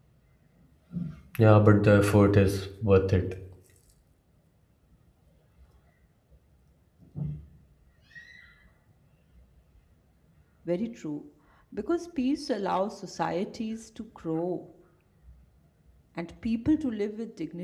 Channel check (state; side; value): identical; both; correlation 1.00